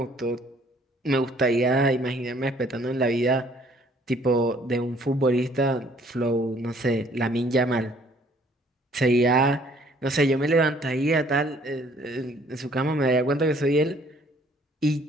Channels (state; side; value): normal; both; correlation 0.60